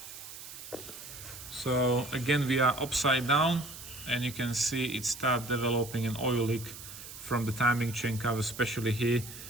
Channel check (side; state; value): right; noise; hiss, 13 dB below the sound